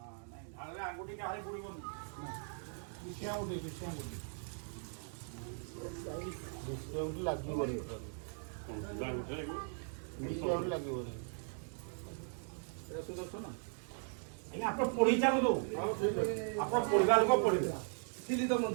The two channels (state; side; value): silent; left; 52 dB below the other